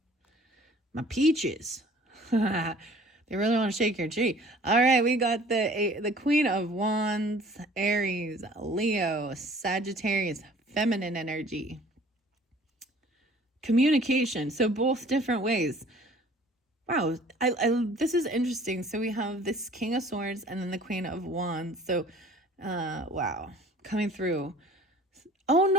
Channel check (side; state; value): both; normal; correlation 0.51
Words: My peaches. They really want to shake your tree. All right, we got the Queen of Wands, Aries, Leo, Sagittarius, feminine energy. Communication. So both different ways. Wow, this is interesting. So we have this King of Swords and then the Queen of Wands. So, wow, coming through. Oh,